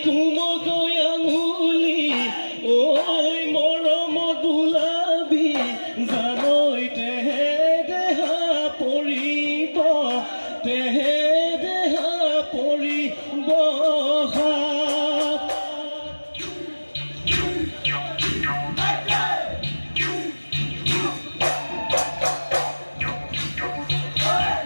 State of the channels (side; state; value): both; inverted; correlation -1.00